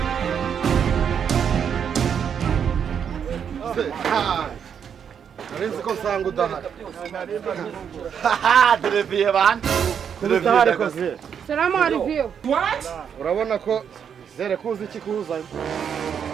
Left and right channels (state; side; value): quieter; left; 7.8 dB